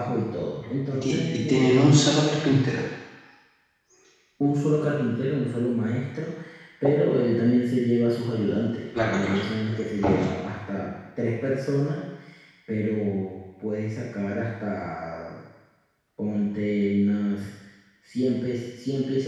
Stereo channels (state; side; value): identical; both; correlation 1.00